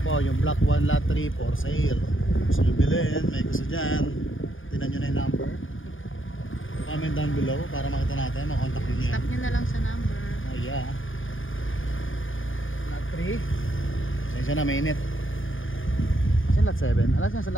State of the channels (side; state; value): right; late; 0.58 ms